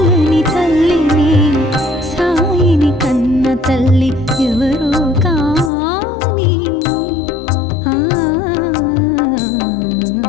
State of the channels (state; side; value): drops out; right; at 5.7 s